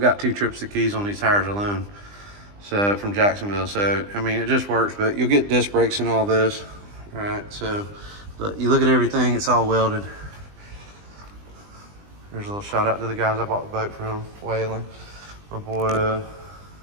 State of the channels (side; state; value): left; late; 20 ms